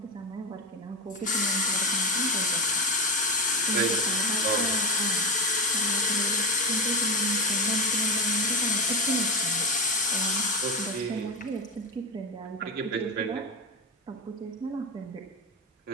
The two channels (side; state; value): both; normal; correlation 0.19